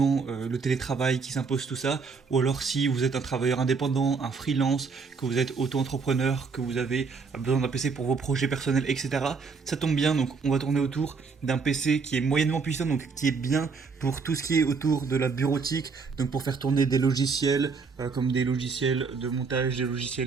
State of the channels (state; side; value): quieter; left; 4.9 dB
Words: le télétravail qui s'impose tout ça, ou alors si vous êtes un travailleur indépendant, un freelance, que vous êtes auto-entrepreneur, que vous avez besoin d'un PC pour vos projets personnels, etc. Ça tombe bien, donc on va tourner autour d'un PC qui est moyennement puissant, donc qui est bien pour tout ce qui est autour de la bureautique, donc pour faire tourner des logiciels, comme des logiciels de montage, des